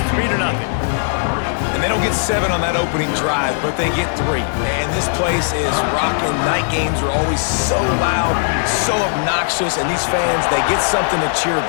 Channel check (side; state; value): right; silent; 66 dB below the other